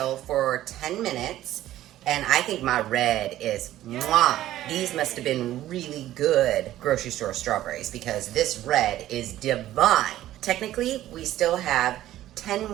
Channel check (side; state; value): left; quieter; 13.8 dB